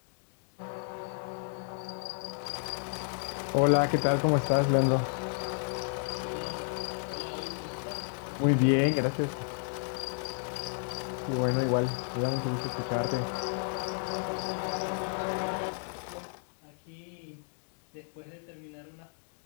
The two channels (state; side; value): silent; right; 56 dB below the other